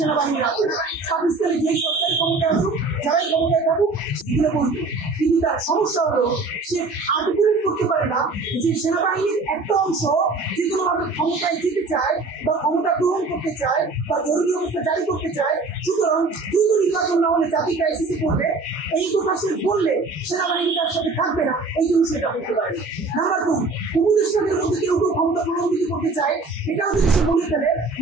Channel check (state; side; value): quieter; left; 3.7 dB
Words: আছে, পাকিস্তানে যেই সরকারি ক্ষমতায় আসুক, যারাই ক্ষমতায় থাকুক, এগুলো বলবে। কিন্তু তার সমস্যা হলো সে আর্টিকুলেট করতে পারে না যে সেনাবাহিনীর একটা অংশ যে কোনোভাবে ক্ষমতায় যেতে চায় বা ক্ষমতা গ্রহণ করতে চায় বা জরুরি অবস্থা জারি করতে চায়, সুতরাং দ্রুত নির্বাচন না হলে জাতি ক্রাইসিসে পড়বে। এই কথা সে বললে সেনাবাহিনী তার সাথে থাকবে না, এই জন্য সেটা বলতে পারে। নাম্বার 2, উপদেষ্টাদের মধ্যে কেউ কেউ ক্ষমতা প্রলম্বিত করতে চায়, এটাও যদি সে বলে ফেলে,